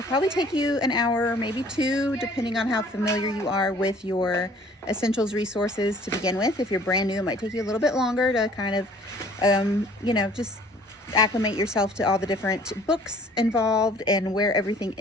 take you an hour, maybe 2, depending on how familiar you are with your Essentials resources to begin with. If you're brand new, it might take you a little bit longer to kind of, just acclimate yourself to all the different books involved and where everything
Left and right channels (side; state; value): both; normal; correlation 0.53